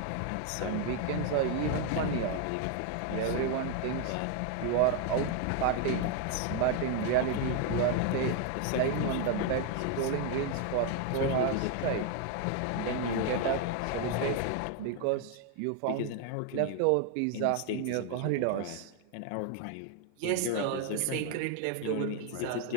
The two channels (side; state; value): both; different; correlation 0.01